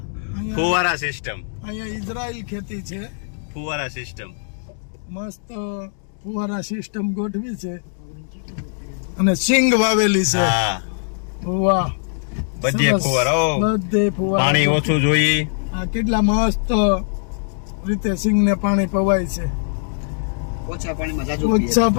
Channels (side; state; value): right; silent; digital silence